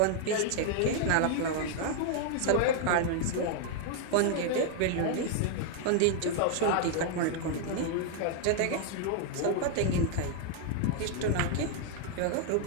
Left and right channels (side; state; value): both; different; correlation -0.01